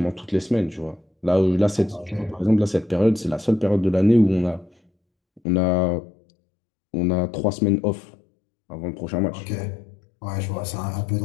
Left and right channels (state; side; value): drops out; right; at 5.4 s